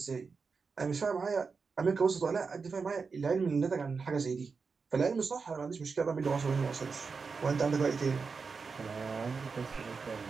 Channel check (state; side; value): quieter; left; 5.0 dB